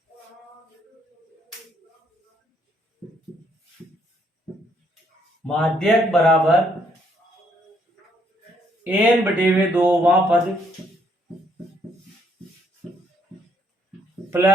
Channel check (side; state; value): both; normal; correlation 0.70